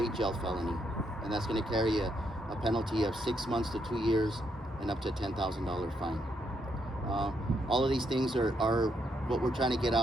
jail felony. And that's going to carry a penalty of 6 months to 2 years and up to a $10,000 fine. All of these things are what we're trying to get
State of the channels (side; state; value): both; normal; correlation 0.77